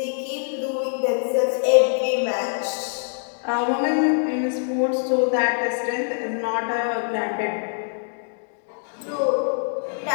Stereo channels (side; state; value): right; silent; digital silence